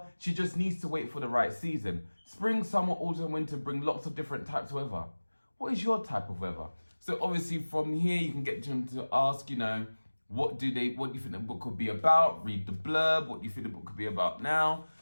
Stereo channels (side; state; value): both; inverted; correlation -1.00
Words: She just needs to wait for the right season. Spring, summer, autumn, winter bring lots of different types of weather. What is your type of weather? So obviously from here you can get them to ask, what do you think the book could be about? Read the blurb. What do you think the book could be about now?